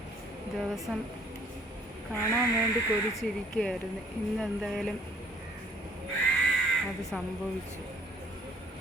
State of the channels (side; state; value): both; normal; correlation 0.59